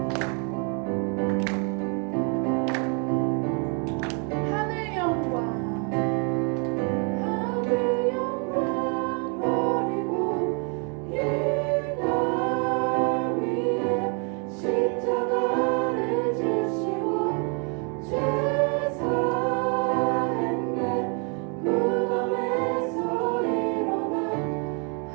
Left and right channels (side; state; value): left; quieter; 37.1 dB